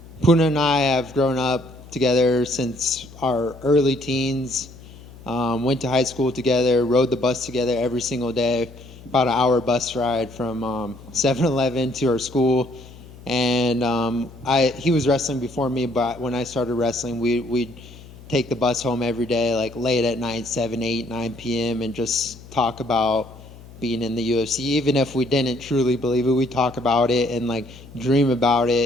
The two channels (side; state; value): left; noise; hum, 19 dB below the sound